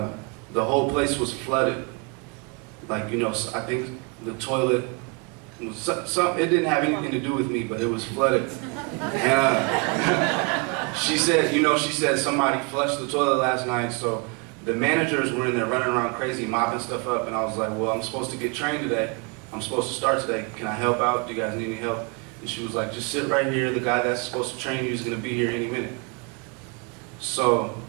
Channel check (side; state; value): left; quieter; 32.2 dB